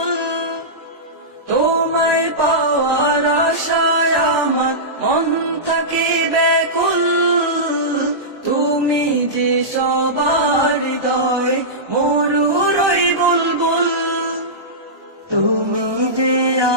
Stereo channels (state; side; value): late; left; 1.2 ms